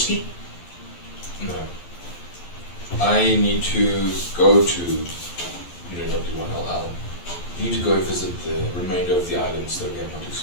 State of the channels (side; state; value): right; late; 12 ms